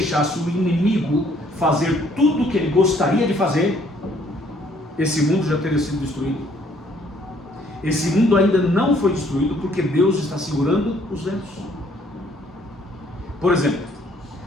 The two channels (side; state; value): both; normal; correlation 0.63